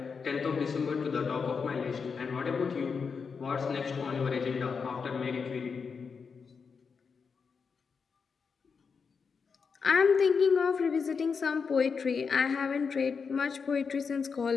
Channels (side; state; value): right; quieter; 5.6 dB